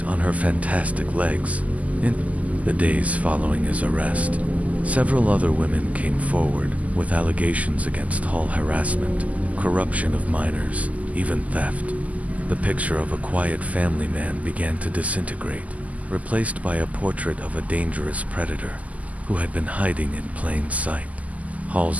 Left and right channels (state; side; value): late; left; 0.073 ms